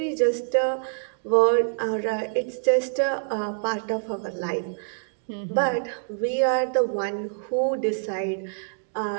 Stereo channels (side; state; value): left; silent; digital silence